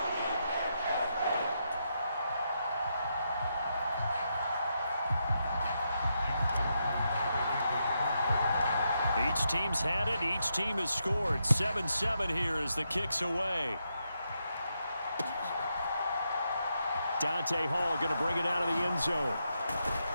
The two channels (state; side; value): inverted; both; correlation -0.82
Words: Each team's had it. Each team has scored. 7-7 here as the kick's away. Dante Hall going to bring it out of the end zone.